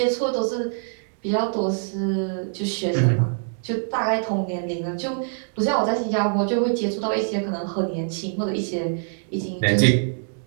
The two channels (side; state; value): left; silent; digital silence